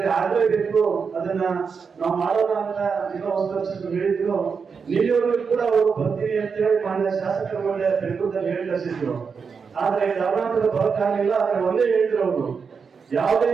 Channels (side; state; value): left; quieter; 5.7 dB